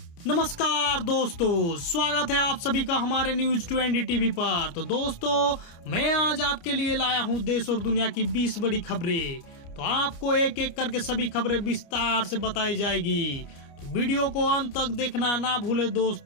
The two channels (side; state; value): right; late; 29 ms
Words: नमस्कार दोस्तों, स्वागत है आप सभी का हमारे न्यूज 20 टीवी पर। तो दोस्तों, मैं आज आपके लिए लाया हूं देश और दुनिया की 20 बड़ी खबरें। तो आपको एक एक करके सभी खबरें विस्तार से बताई जाएगी, तो वीडियो को अंत तक देखना ना भूले